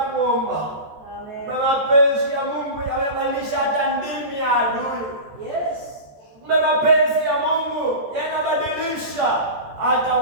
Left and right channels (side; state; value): left; late; 14 ms